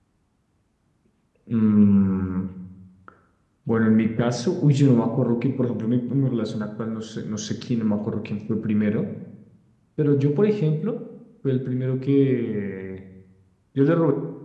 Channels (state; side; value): identical; both; correlation 1.00